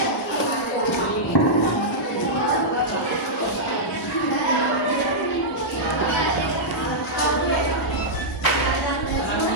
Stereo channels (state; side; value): normal; both; correlation -0.10